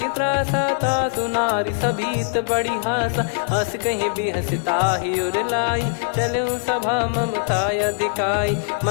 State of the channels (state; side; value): silent; right; digital silence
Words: त्रासा तासु नारी सभीत बड़ी हासा हस कहीं भी हंसता ही उर लाई चलूं सभा ममता दिखाई